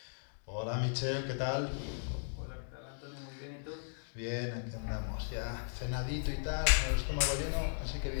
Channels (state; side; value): silent; right; digital silence